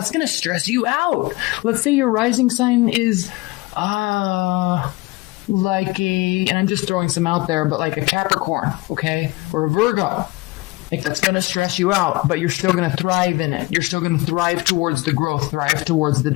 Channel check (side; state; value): right; quieter; 22.2 dB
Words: going to stress you out. Let's say your rising sign is, and I'm just throwing some out there, but like a Capricorn, okay? Or a Virgo. Like, that's going to stress you out, but you're still going to thrive in it. You're still going to thrive towards the growth, thrive towards the